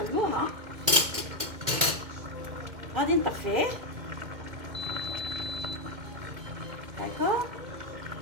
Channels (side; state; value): left; late; 2.1 ms